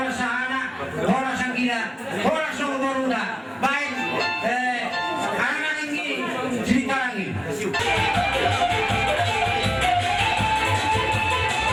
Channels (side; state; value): both; identical; correlation 1.00